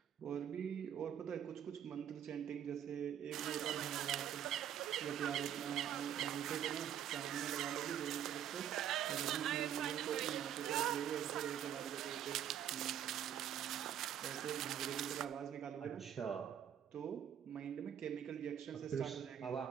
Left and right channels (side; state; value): left; quieter; 9.9 dB